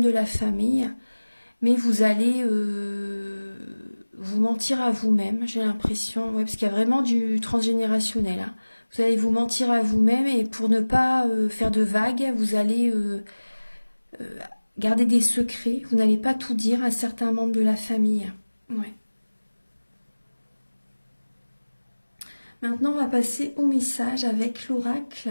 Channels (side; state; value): both; inverted; correlation -1.00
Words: de la famille. Mais vous allez vous mentir à vous-même, j'ai l'impression. Ouais, parce qu'il y a vraiment du transgénérationnel. Hein. Vous allez vous mentir à vous-même et pour ne pas faire de vagues, vous allez garder des secrets. Vous n'allez pas tout dire à certains membres de la famille. Ouais. Maintenant, on va passer au message avec l'oracle